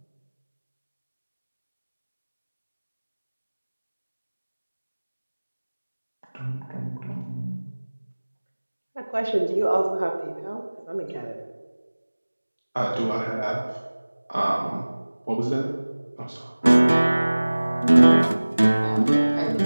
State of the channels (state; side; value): inverted; both; correlation -1.00